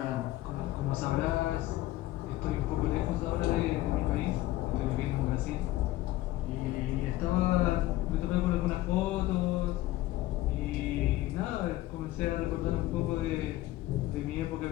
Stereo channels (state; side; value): quieter; right; 16.2 dB